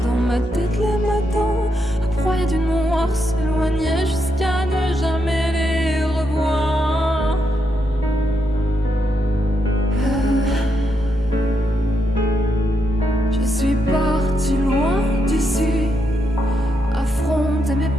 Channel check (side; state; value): both; normal; correlation 0.81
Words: Dans ma tête les matins, à proie du noir, s'éloignaient jusqu'à ne jamais les revoir. Je suis partie loin d'ici, affronter